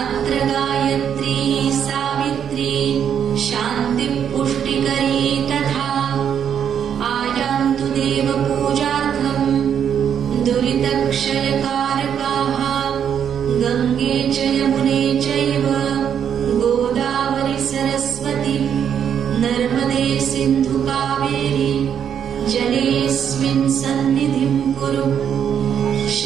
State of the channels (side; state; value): left; quieter; 8.4 dB